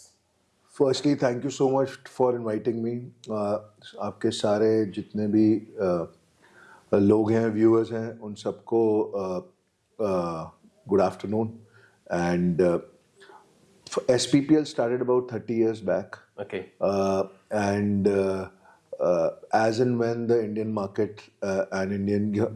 Firstly, thank you so much for inviting me. आपके सारे जितने भी लोग हैं, viewers हैं, उन सबको good afternoon. And SPPL started about 30 years back. Okay. And as and when the Indian market and Indian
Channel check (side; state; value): both; identical; correlation 1.00